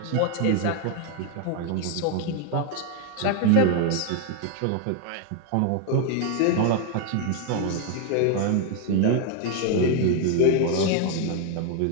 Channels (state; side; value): different; both; correlation 0.01